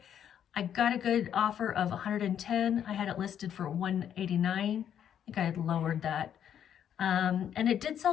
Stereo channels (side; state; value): right; quieter; 9.4 dB